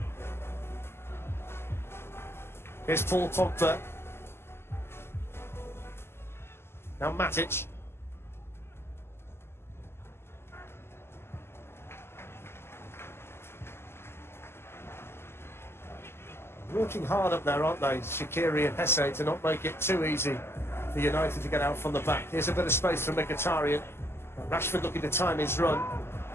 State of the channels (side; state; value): right; late; 0.12 ms